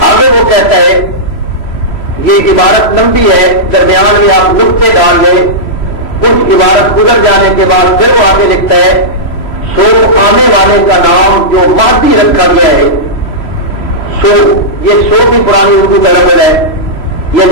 آگے وہ کہتا ہے، یہ عبارت لمبی ہے، درمیان میں آپ نقطے ڈال لیں، کچھ عبارت گزر جانے کے بعد پھر وہ آگے لکھتا ہے سو آنے والے کا نام جو مادی رکھا گیا ہے، سو یہ سو بھی پرانی اردو کا لفظ ہے،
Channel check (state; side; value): late; right; 3.0 ms